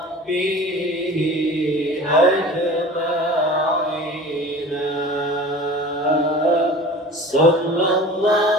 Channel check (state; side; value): normal; both; correlation 0.40